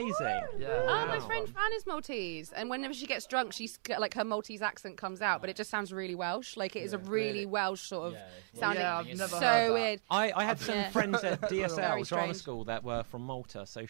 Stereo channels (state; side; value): silent; left; digital silence